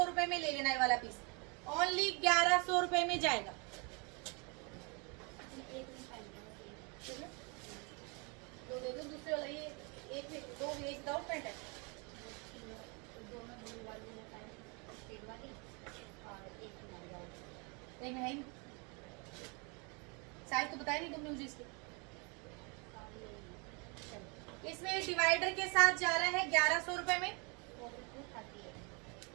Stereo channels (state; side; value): quieter; left; 32.3 dB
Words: रुपए में ले लेना है वाला पीस, ओनली 1100 रुपए में जाएगा। एक में पहनना है। दो दे दो, दूसरे वाला ये एक में दो, एक विदाउट पैंट है। दोनों ब्लू वाली में पहन शेड वाली और एक में वाली। एक में है ही साइज तो बताया नहीं तुमने मुझे इसके। इसमें डिवाइडर के साथ जा रहा है 1100 रुपए में,